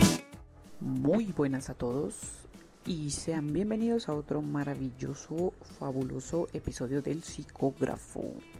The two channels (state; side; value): identical; both; correlation 1.00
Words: Muy buenas a todos y sean bienvenidos a otro maravilloso, fabuloso episodio del Psicógrafo,